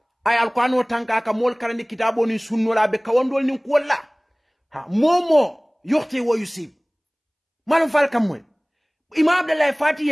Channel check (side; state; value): both; identical; correlation 1.00